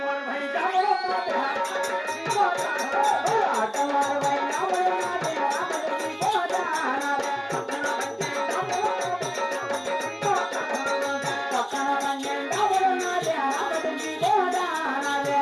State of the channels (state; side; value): identical; both; correlation 1.00